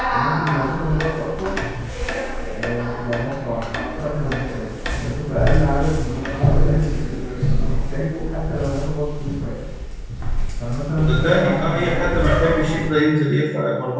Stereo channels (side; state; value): both; identical; correlation 1.00